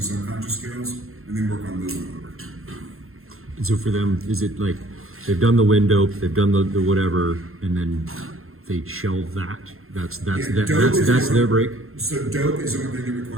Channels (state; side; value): late; left; 0.62 ms